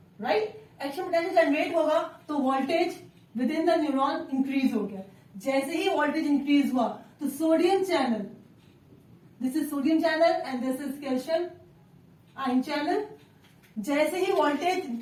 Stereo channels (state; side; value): identical; both; correlation 1.00